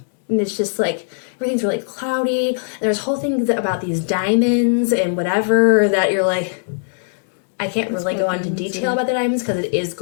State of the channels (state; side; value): silent; right; digital silence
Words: And it's just, like, everything's really cloudy. And there's whole things about these diamonds and whatever that you're like, I can't really go into detail about the diamonds because it is